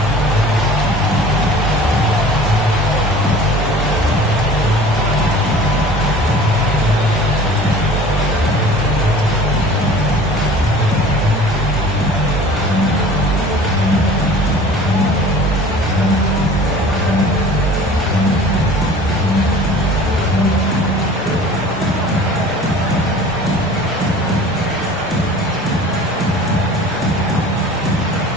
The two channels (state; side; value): normal; both; correlation 0.44